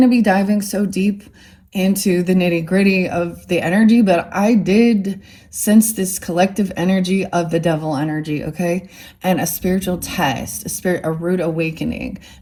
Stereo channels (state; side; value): identical; both; correlation 1.00